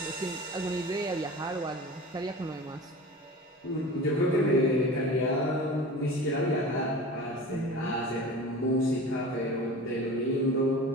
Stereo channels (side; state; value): both; normal; correlation 0.36